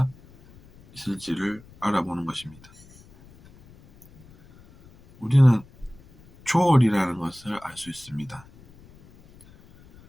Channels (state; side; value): noise; left; rumble, 25 dB below the sound